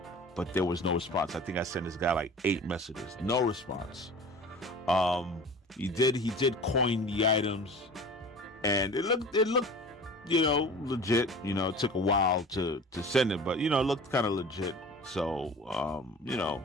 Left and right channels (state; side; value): normal; both; correlation 0.40